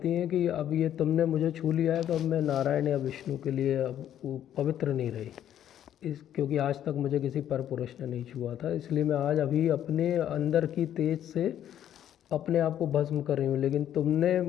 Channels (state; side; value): quieter; right; 10.7 dB